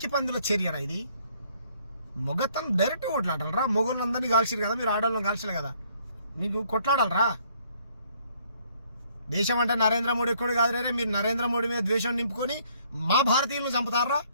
పందుల చర్యరా ఇది. మొగతను డైరెక్ట్ కొట్లాడాలరా. మొగోళ్ళందరినీ కాల్చారు కదా, మీరు ఆడవాళ్ళని కాల్చలే కదా, మీకు కొట్లాడాలరా. దేశం అంటే నరేంద్ర మోడీ కూడా కాదు రే, మీరు నరేంద్ర మోడీ మీద ద్వేషం నింపుకొని మా భారతీయులను చంపుతారా,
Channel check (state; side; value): inverted; both; correlation -0.64